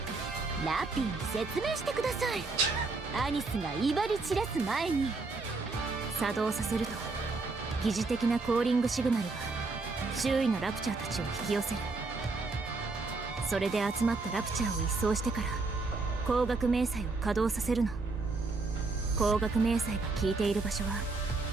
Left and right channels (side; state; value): left; quieter; 3.7 dB